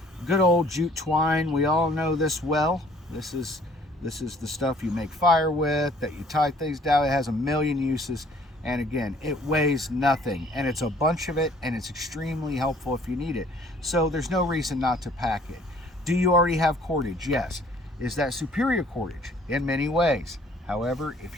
good old jute twine. We all know this well. This is the stuff you make fire with, that you tie things down. It has a million uses, and again, it weighs nothing, and it's a bunch of it, and it's extremely helpful if you need it. So there's no reason not to pack it. Do you already have cordage? Yes. Is that superior cordage? In many ways. However,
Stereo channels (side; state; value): both; normal; correlation 0.57